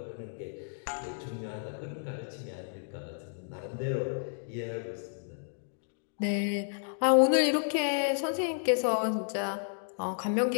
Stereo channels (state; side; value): silent; right; digital silence